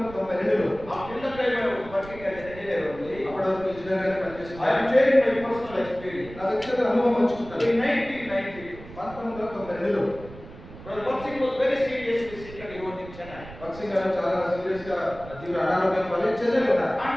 after the time I was working as an engineer only, అప్పటి వరకు ఇంజనీర్ గా I am పనిచేస్తున్నాను. sharing my personal experience. నా వ్యక్తిగత అనుభవం పంచుకుంటాను. In 1992, 1992లో Brother Bhaksing was very seriously sick and he was in Chennai. భక్సింగ్ గారు చాలా సీరియస్ గా తీవ్ర అనారోగ్యం వల్ల చెన్నైలో ఉన్నారు. And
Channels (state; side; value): noise; right; rumble, 16 dB below the sound